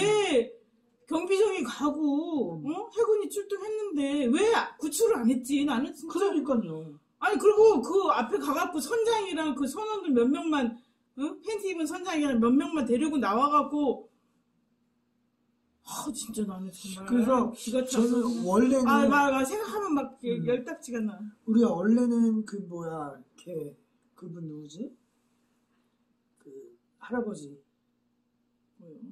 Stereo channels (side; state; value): both; identical; correlation 1.00